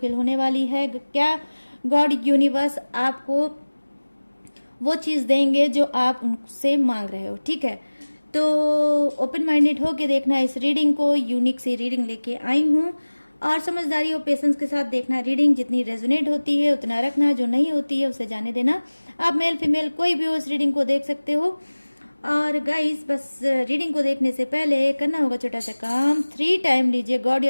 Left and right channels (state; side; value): inverted; both; correlation -1.00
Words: होने वाली है, क्या गॉड यूनिवर्स आपको वो चीज देंगे जो आप उनसे मांग रहे हो। ठीक है, तो ओपन माइंडेड होके देखना इस रीडिंग को। यूनिक सी रीडिंग लेके आई हूँ, और समझदारी और पेशेंस के साथ देखना रीडिंग। जितनी रेजोनेट होती है उतना रखना, जो नहीं होती है उसे जाने देना। आप मेल फीमेल कोई भी हो इस रीडिंग को देख सकते हो। और गाइस बस रीडिंग को देखने से पहले करना होगा छोटा सा काम, 3 टाइम लीजिए गॉड